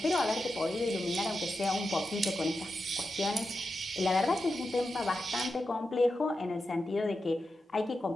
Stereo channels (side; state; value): both; normal; correlation 0.89